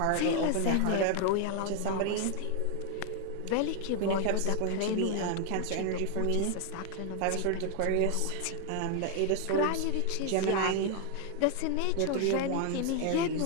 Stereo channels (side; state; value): both; different; correlation 0.00